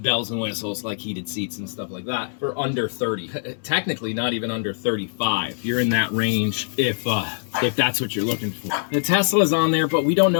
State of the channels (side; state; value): right; silent; 59 dB below the other